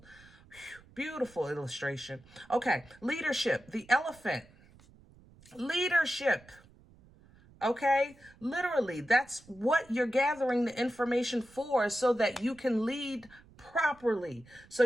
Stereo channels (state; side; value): noise; right; rumble, 26 dB below the sound